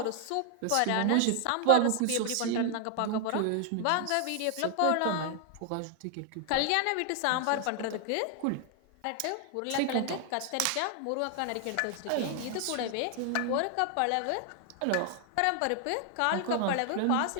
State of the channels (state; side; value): different; both; correlation 0.00